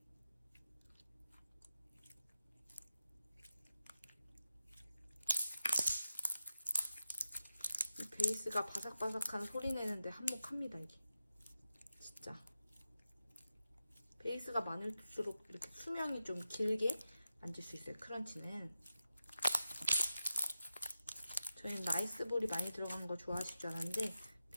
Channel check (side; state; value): both; inverted; correlation -0.90